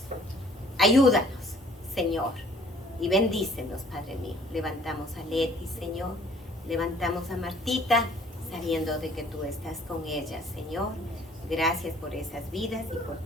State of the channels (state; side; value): normal; both; correlation 0.56